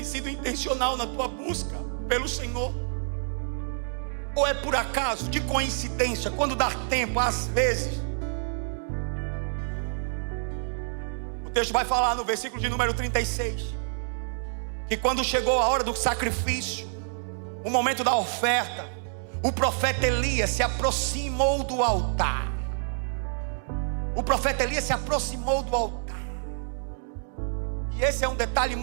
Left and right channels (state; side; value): silent; left; digital silence